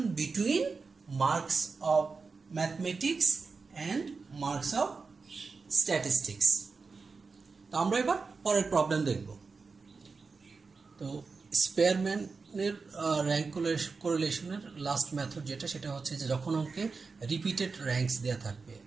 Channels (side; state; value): left; quieter; 4.6 dB